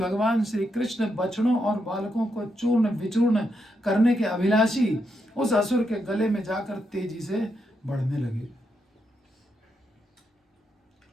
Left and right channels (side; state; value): both; normal; correlation 0.82